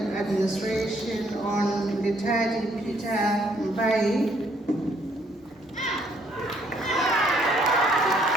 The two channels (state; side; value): normal; both; correlation 0.67